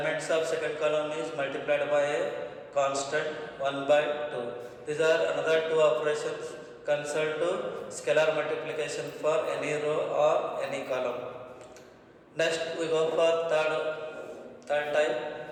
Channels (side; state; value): both; identical; correlation 1.00